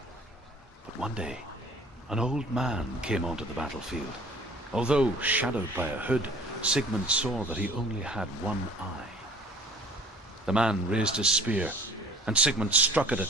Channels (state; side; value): normal; both; correlation 0.50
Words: But one day, an old man came onto the battlefield, Although shadowed by a hood, Sigmund saw that he only had one eye. The man raised his spear, and Sigmund struck at